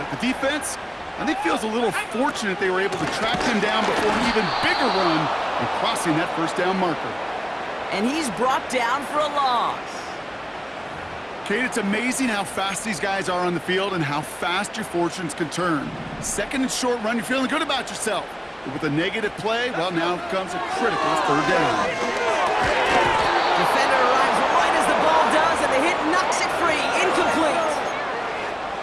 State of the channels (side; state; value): both; identical; correlation 1.00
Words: The defense, I think, feels a little fortunate they were able to track him down before an even bigger run and crossing that first down marker. And he's brought down for a loss. Kate, it's amazing how fast these guys are on the field and how fast your fortunes can turn. Second and short run, you're feeling good about yourself. But with a negative play, well, now comes a critical third down. Defender arrives right as the ball does, and the hit knocks it free. Incomplete.